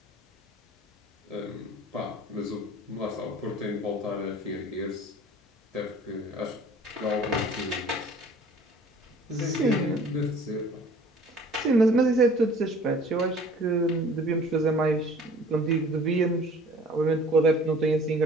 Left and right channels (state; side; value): normal; both; correlation 0.49